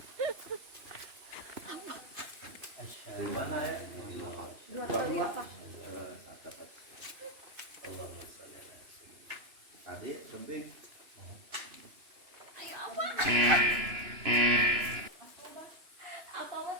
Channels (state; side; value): late; left; 2.9 ms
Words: Gimana ya? Tadi kembing. Apa mah